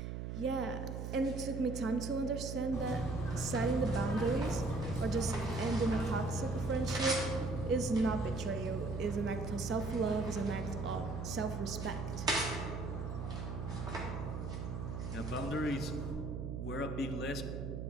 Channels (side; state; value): right; noise; hum, 5 dB below the sound